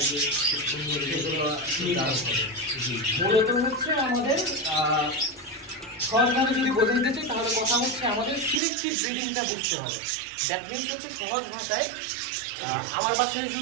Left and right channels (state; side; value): drops out; left; at 8.6 s